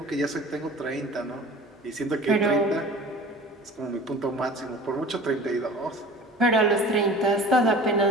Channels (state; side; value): normal; both; correlation 0.41